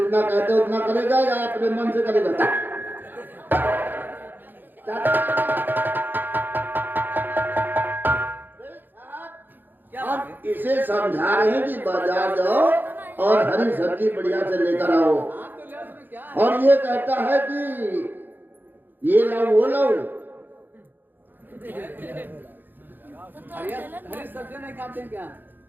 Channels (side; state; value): left; late; 0.091 ms